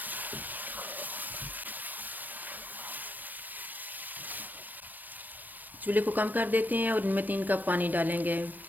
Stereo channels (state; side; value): late; left; 0.088 ms